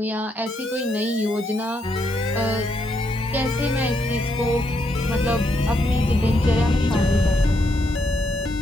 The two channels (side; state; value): both; normal; correlation 0.77